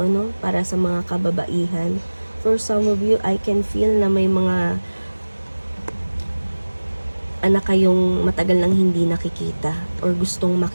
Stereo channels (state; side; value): inverted; both; correlation -1.00